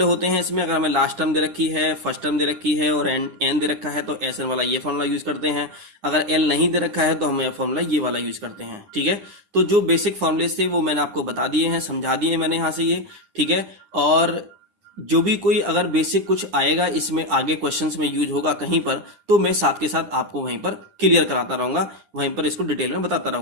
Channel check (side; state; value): left; late; 9.8 ms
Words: होते हैं इसमें। अगर हमें लास्ट टर्म दे रखी है, फर्स्ट टर्म दे रखी है और एन दे रखा है तो एस एन वाला ये फॉर्मूला यूज करते हैं। अगर एल नहीं दे रखा है तो हम यह फॉर्मूला ये वाला यूज करते हैं, ठीक है। तो जो बेसिक फॉर्मूले थे वो मैंने आपको बता दिए हैं, समझा दिए मैंने यहाँ से ये, ठीक है। और जो भी कोई अगर बेसिक कुछ आएगा इसमें आगे क्वेश्चंस में यूज होगा कहीं पर, तो मैं साथ के साथ आपको वहीं पर क्लियर कराता रहूंगा, वहीं पर इसको डिटेल में बताता